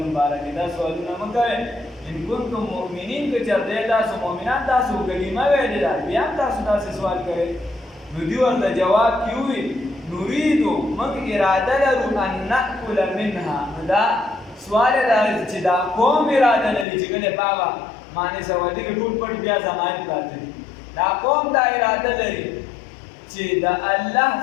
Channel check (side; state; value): right; drops out; at 16.9 s